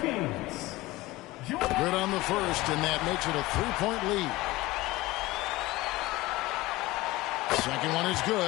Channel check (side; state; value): right; quieter; 19.0 dB